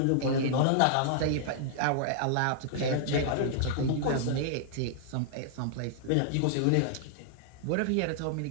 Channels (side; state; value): both; different; correlation -0.01